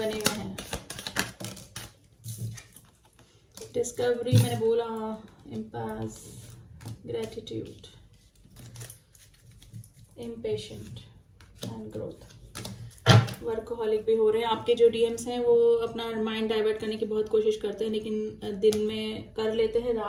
हुए हैं। डिस्कवरी मैंने बोला, impasse, gratitude, impatient and growth. Workaholic भी हो रहे हैं आपके जो डीएम्स हैं, वो अपना माइंड डाइवर्ट करने की बहुत कोशिश करते हैं, लेकिन दिन में कर लेते हैं,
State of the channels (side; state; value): both; identical; correlation 1.00